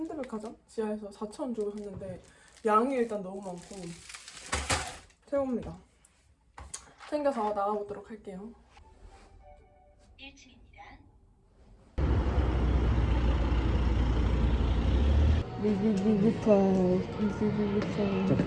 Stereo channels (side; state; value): both; identical; correlation 1.00